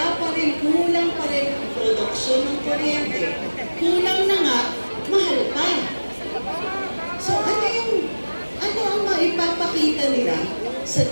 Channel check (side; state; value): both; inverted; correlation -1.00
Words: pa rin, kulang pa rin ang produksyon ng kuryente. Kulang na nga, mahal pa. So ano ang maipapakita nila sa